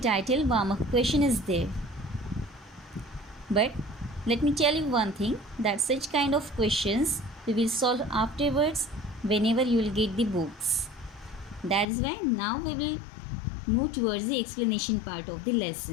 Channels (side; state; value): right; drops out; at 11.9 s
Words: warm-up question is there. But let me tell you one thing, that such kind of questions we will solve afterwards whenever you will get the books. That is why now we will move towards the explanation part of the